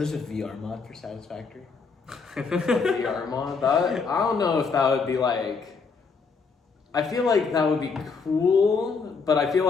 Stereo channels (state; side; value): quieter; right; 4.9 dB